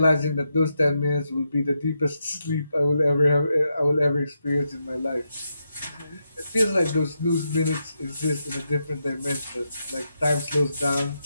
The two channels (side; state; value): both; inverted; correlation -0.84